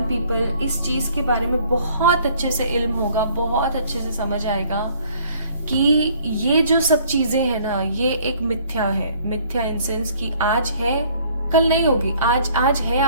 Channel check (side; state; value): both; inverted; correlation -0.58